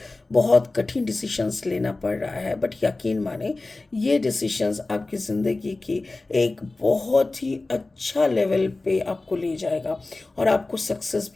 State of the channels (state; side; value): quieter; right; 3.2 dB